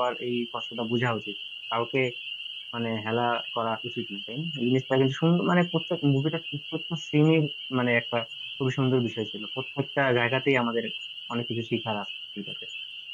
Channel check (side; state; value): both; identical; correlation 1.00